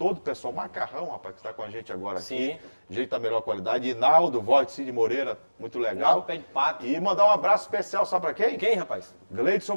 o pessoal, Macarrão, rapaz, que está com a gente agora aqui. Jeito da melhor qualidade. Inaldo, voz de Cid Moreira, muito legal. Pé de pato. E mandar um abraço especial, sabe para quem? Quem, rapaz? Gleidson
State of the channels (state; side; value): inverted; both; correlation -1.00